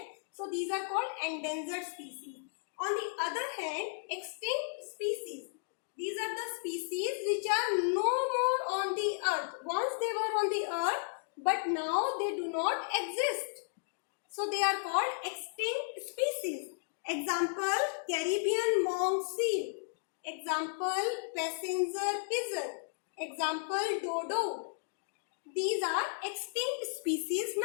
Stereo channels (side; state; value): right; silent; digital silence